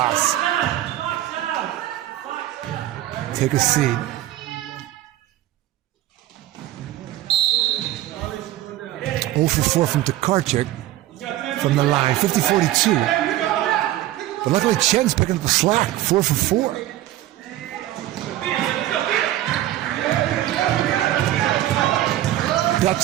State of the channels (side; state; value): left; quieter; 14.4 dB